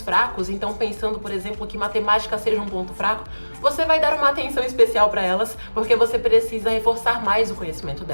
fracos, então pensando, por exemplo, que matemática seja um ponto fraco, você vai dar uma atenção especial para elas, porque você precisa reforçar mais o conhecimento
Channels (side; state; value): both; inverted; correlation -1.00